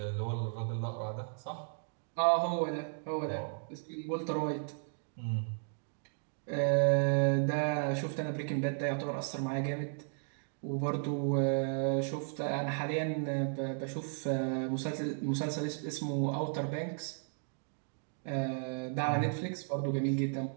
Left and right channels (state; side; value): silent; left; digital silence